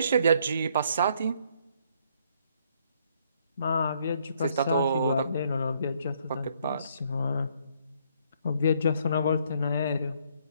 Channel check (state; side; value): inverted; both; correlation -0.67